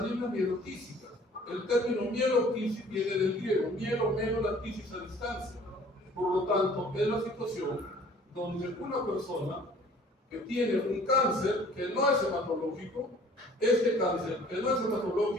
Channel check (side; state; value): both; normal; correlation 0.53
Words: mielotísicas. El término mielotisis viene del griego, mielo, melo, la tisis a distancia. Por lo tanto, es la situación donde una persona que tiene un cáncer que no es hematológico, este cáncer que no es